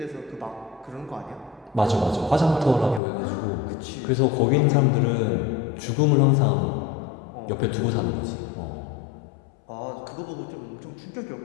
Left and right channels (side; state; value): right; drops out; at 3.0 s